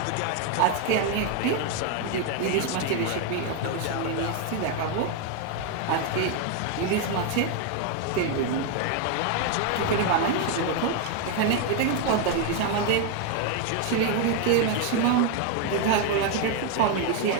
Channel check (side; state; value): both; different; correlation 0.01